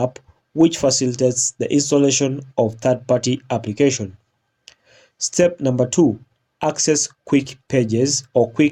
which facilitates the installation of third-party application. Step number 2, access quick pages or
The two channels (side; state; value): both; identical; correlation 1.00